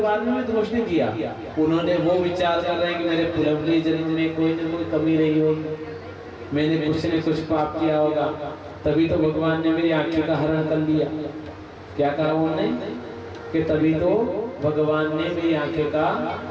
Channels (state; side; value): identical; both; correlation 1.00